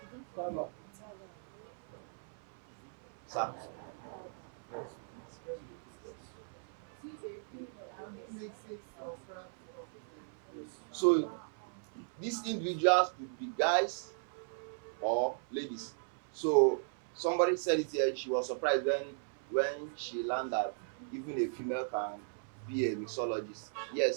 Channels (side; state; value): left; silent; 53 dB below the other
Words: No. Sir. So these individuals could be guys or ladies. So somebody said it here, she was surprised when she learned that even a female can be a mixologist.